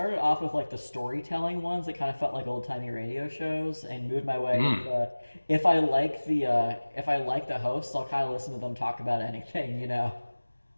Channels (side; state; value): both; inverted; correlation -1.00